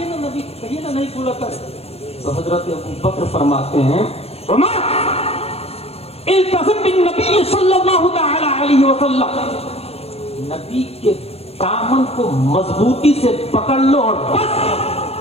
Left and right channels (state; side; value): late; right; 0.29 ms